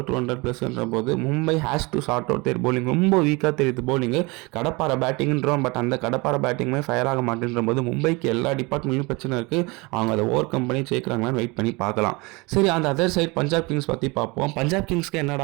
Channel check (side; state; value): left; quieter; 26.0 dB